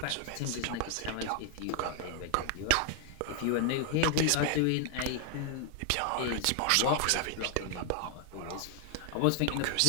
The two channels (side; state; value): both; different; correlation 0.00